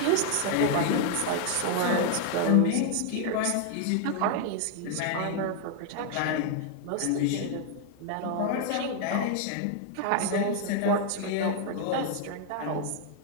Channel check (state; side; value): different; both; correlation 0.00